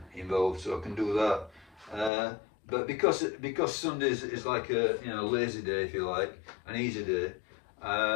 involved, so I can do that. But because Sunday is like a, you know, lazy day, if you like, an easy day,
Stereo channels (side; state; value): right; drops out; at 2.1 s